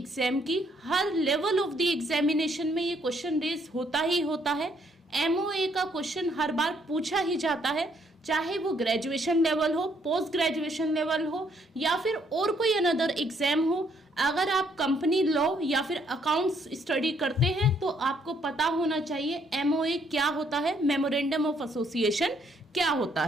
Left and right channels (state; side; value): normal; both; correlation 0.69